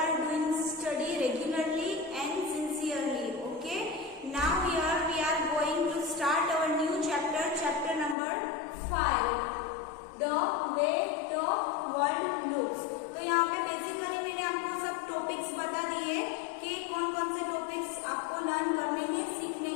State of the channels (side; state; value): right; drops out; at 8.2 s